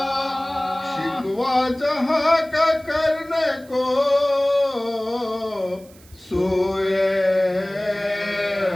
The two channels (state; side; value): noise; right; hiss, 26 dB below the sound